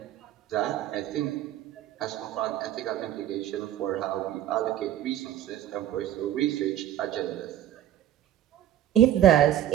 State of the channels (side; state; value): left; quieter; 11.7 dB